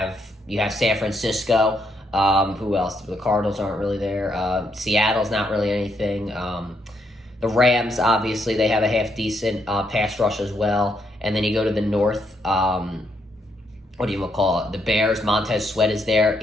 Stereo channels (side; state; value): both; normal; correlation 0.76